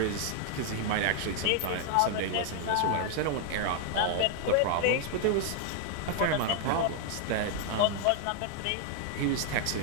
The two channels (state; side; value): different; both; correlation 0.00